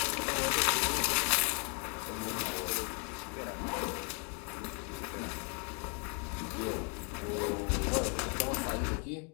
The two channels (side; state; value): right; quieter; 35.7 dB